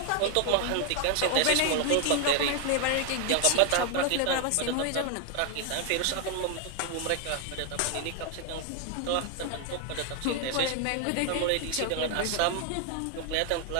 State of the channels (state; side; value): different; both; correlation 0.00